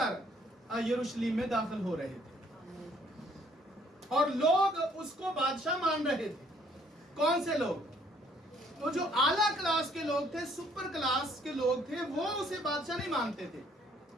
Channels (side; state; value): both; normal; correlation 0.64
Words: यरूशलेम में दाखिल हो रहे थे और लोग उसको बादशाह मान रहे थे। कौन से लोग? तो जो आला क्लास के लोग थे, सुपर क्लास के लोग थे, वो उसे बादशाह नहीं मानते थे।